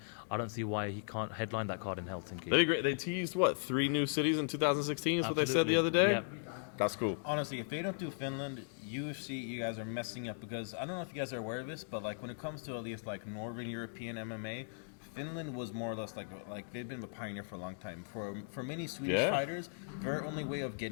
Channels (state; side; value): silent; right; digital silence